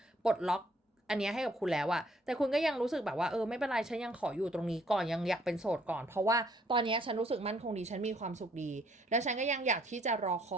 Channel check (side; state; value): both; normal; correlation 0.65